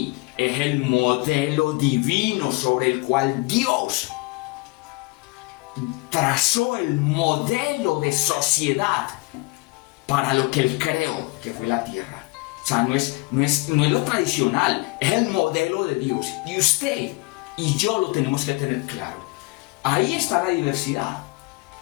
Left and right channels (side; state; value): right; quieter; 24.9 dB